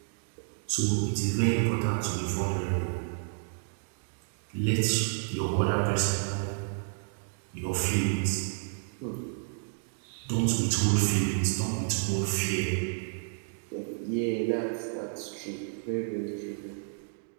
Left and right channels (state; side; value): silent; left; digital silence